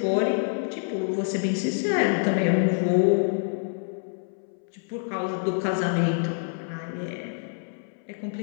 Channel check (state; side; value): silent; right; 59 dB below the other